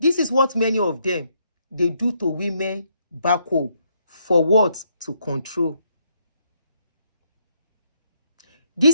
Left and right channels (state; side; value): inverted; both; correlation -0.74